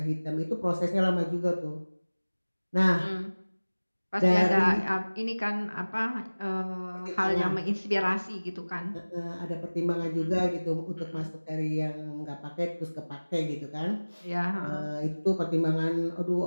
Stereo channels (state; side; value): inverted; both; correlation -1.00